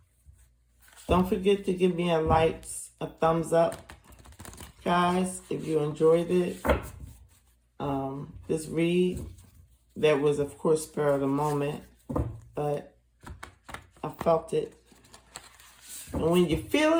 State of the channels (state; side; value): identical; both; correlation 1.00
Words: Don't forget to give me a like, a thumbs up, guys, if you enjoyed it. This read, that was, of course, spur of the moment, but I felt it. And when you feel